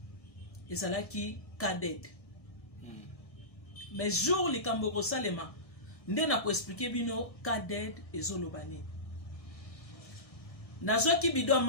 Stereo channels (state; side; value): late; right; 1.6 ms